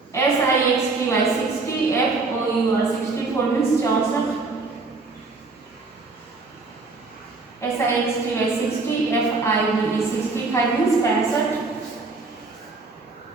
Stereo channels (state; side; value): quieter; left; 3.8 dB